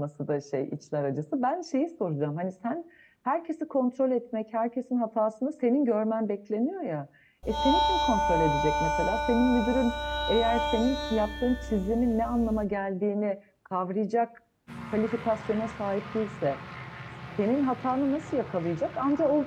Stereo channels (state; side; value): identical; both; correlation 1.00